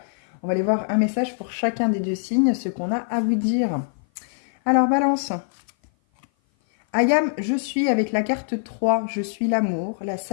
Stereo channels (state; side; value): silent; right; 56 dB below the other